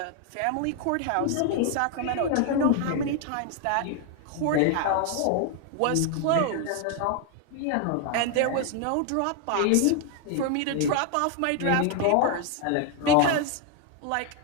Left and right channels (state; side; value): different; both; correlation 0.01